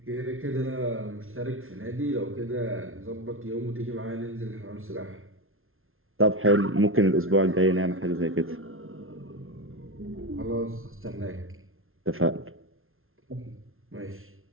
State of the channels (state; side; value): late; left; 0.61 ms